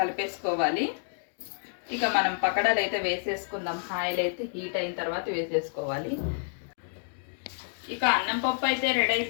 కలిపేసుకోవాలి. ఇక మనం పకోడాలు అయితే వేసేసుకుందాం. ఆయిల్ అయితే హీట్ అయిన తర్వాత వేసేసుకోవాలి. ఇక అన్నం పప్పు అయితే రెడీ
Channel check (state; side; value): silent; right; digital silence